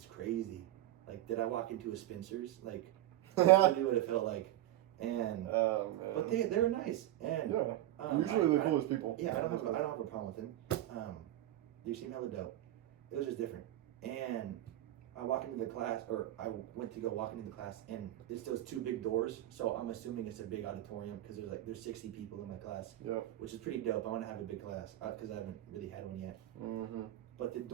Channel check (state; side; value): quieter; left; 14.4 dB